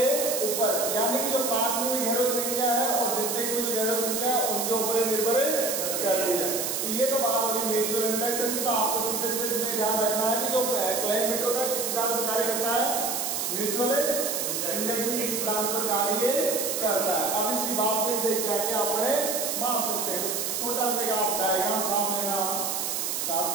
ऊपर, यानी कि जो पाथ में घेरो संख्या है और द्वितीयक में जो घेरो संख्या है उनके ऊपर निर्भर करती है। ये तो बात होगी म्यूचुअल इंडक्शन की। तो आपको सीधे सीधे इसमें ध्यान रखना है कि जो क्लैंप मीटर होता है किस सिद्धांत पर कार्य करता है, म्यूचुअल इंडक्शन के सिद्धांत पर कार्य करता है। अब इसकी बात में से क्या क्या अपने माप सकते हैं, तो छोटा सा आप डायग्राम छाप लेना साथ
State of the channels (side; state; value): right; noise; hiss, 1 dB below the sound